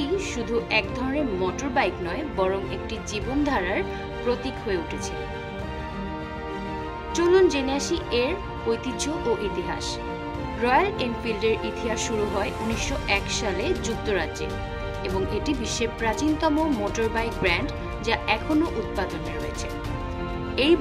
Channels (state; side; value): identical; both; correlation 1.00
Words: শুধু এক ধরনের মোটর বাইক নয়, বরং একটি জীবনধারার প্রতীক হয়ে উঠেছে? চলুন জেনে আসি এর ঐতিহ্য ও ইতিহাস। রয়্যাল এনফিল্ডের ইতিহাস শুরু হয় 1901 সালে যুক্তরাজ্যে এবং এটি বিশ্বের প্রাচীনতম মোটর বাইক ব্র্যান্ড, যা এখনও উৎপাদনে রয়েছে। এই